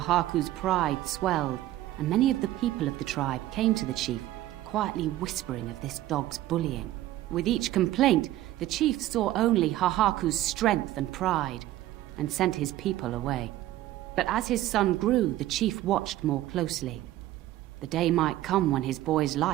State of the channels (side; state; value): left; quieter; 14.8 dB